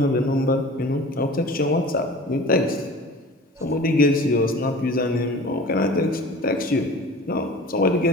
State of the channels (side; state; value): both; normal; correlation 0.41